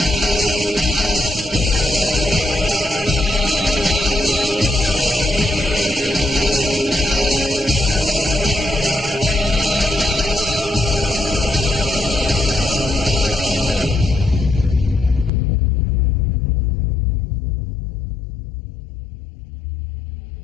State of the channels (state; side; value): drops out; right; at 15.3 s